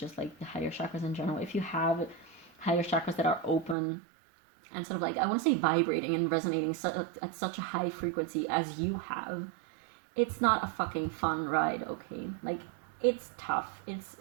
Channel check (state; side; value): drops out; left; at 3.8 s